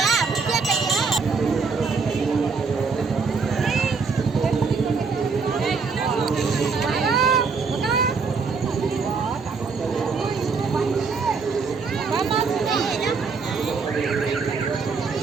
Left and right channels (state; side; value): quieter; left; 4.9 dB